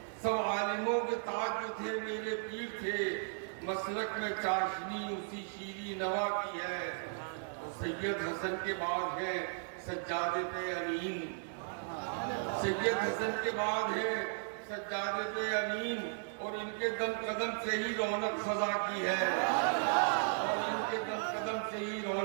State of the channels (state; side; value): silent; left; digital silence